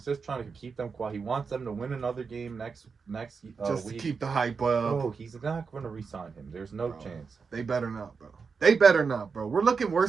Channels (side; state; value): left; quieter; 5.3 dB